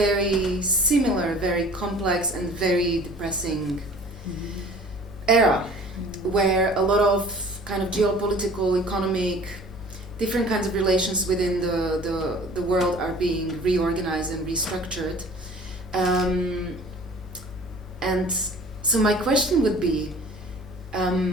similar, very complex and very depressing era, where a lot of kind of geopolitical, economic, different kinds of relations within the world are being reorganized and restructured. And so my question would be,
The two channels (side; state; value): both; normal; correlation 0.47